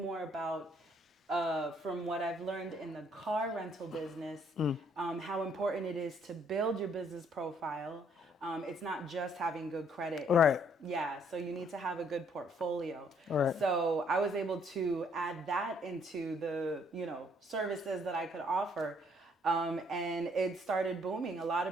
more about, from what I've learned in the car rental business, how important it is to build your business profile. It's not just having good credit. Right. Yeah, so you need to have a good portfolio. Right. So I was able to add that into the, services that I could offer. And it started booming. A lot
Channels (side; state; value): both; normal; correlation 0.65